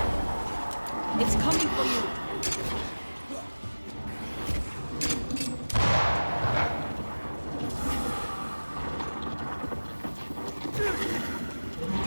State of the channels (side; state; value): both; inverted; correlation -1.00